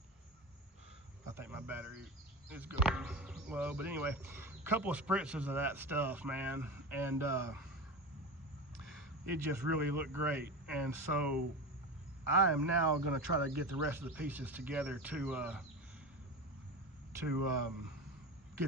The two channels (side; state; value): both; normal; correlation 0.25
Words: think my battery is going low, but anyway, a couple of spritzes of that stuff, man, and it just really looked great. And so I am now going to try to get the rest of the pieces together to